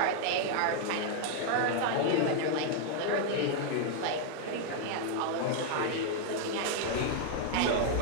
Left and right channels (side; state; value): both; different; correlation 0.00